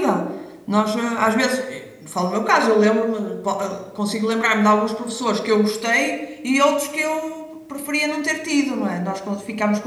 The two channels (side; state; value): both; identical; correlation 1.00